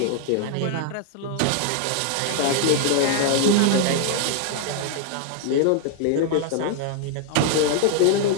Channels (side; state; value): both; different; correlation 0.00